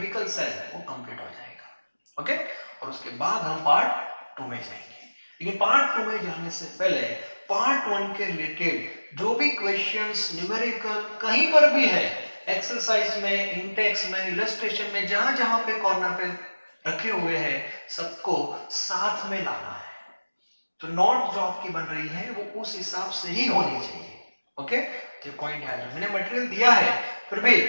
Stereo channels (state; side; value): inverted; both; correlation -1.00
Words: सेल वो कंप्लीट हो जाएगा, ओके, और उसके बाद हम पार्ट 2 में जाएंगे। लेकिन पार्ट 2 में जाने से पहले पार्ट 1 के रिलेटेड जो भी क्वेश्चंस न्यूमेरिकल कहीं पर भी है, एक्सरसाइज में, इंटेक्स में, इलस्ट्रेशन में, जहां जहां पे कॉर्नर पे रखे हुए हैं, सबको साथ में लाना है। तो नोट जो आपकी बन रही है वो उस हिसाब से ही होनी चाहिए, ओके। तो पॉइंट याद रखना, मैंने मटेरियल दिया है, फिर भी